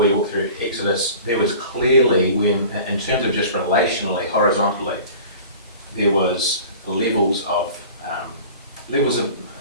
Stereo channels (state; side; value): inverted; both; correlation -0.42